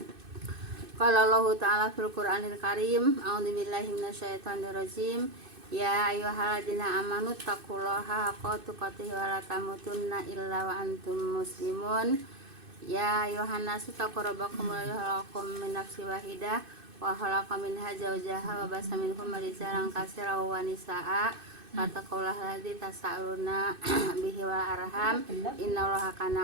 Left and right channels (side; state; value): left; late; 2.6 ms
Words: Qala Allahu ta'ala fil Qur'anil Karim, a'udzubillahi minasyaitonir rajim. Ya ayyuhalladzina amanu taqullaha haqqa tuqatih wa la tamutunna illa wa antum muslimun. Ya ayyuhan nasu taqu rabbakum alladzi khalaqakum min nafsin wahidah wa khalaqa minha zawjaha wa basa minhum rijalan katsiran wa nisaa. Fattaqullaha alladzi tasaaluna bihi wal arham innallaha